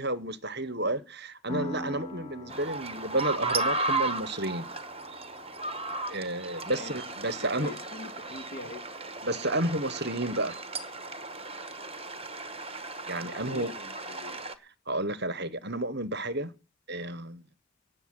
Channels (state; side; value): normal; both; correlation -0.17